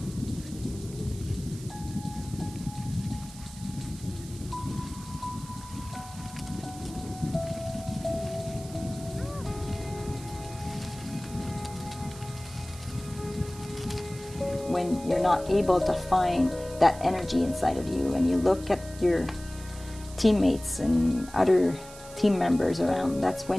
When you're not able to find that energy inside of you, and you look at your teammates and other team members around, that's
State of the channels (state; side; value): noise; right; hiss, 17 dB below the sound